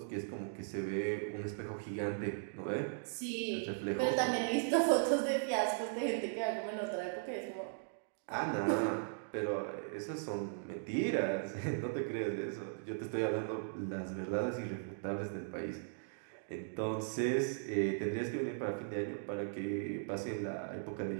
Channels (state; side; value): silent; left; digital silence